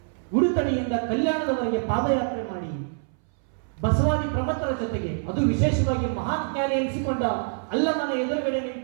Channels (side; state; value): left; silent; 61 dB below the other